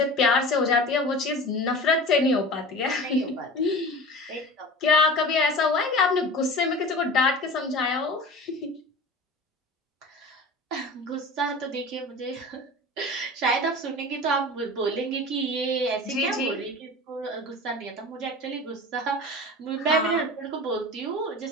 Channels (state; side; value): normal; both; correlation 0.35